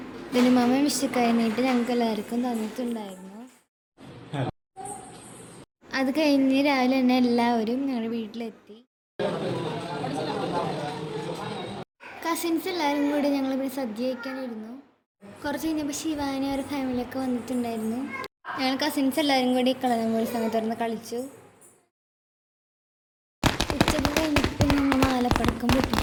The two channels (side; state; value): both; identical; correlation 1.00